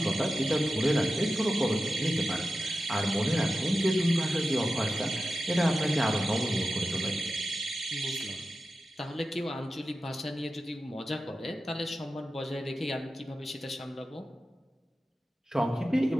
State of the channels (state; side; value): normal; both; correlation 0.93